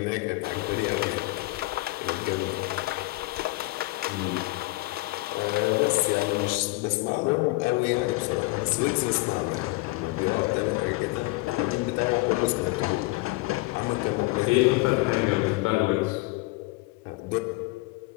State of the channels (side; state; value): right; quieter; 22.6 dB